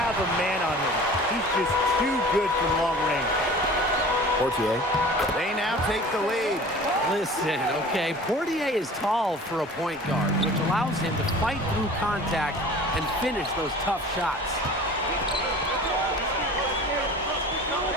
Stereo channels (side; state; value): both; normal; correlation 0.42